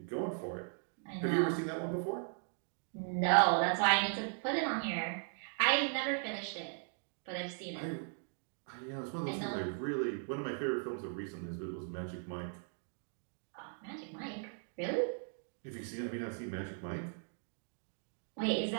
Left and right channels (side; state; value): left; silent; 52 dB below the other